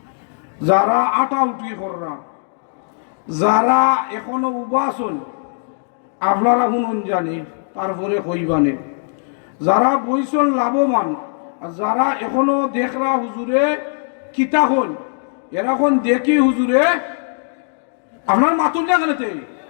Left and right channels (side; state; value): right; silent; 66 dB below the other